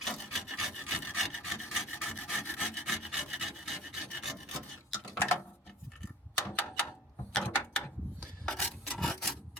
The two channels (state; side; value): normal; both; correlation 0.46